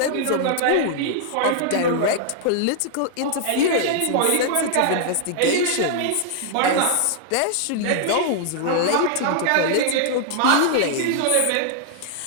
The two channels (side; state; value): both; different; correlation -0.01